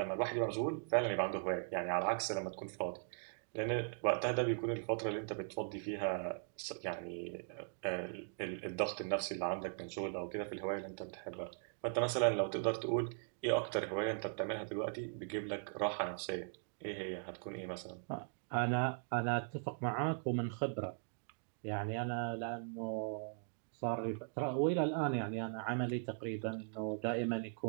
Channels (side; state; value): left; silent; digital silence